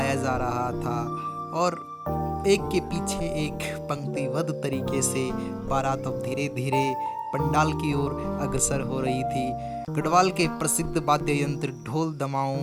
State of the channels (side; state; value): both; identical; correlation 1.00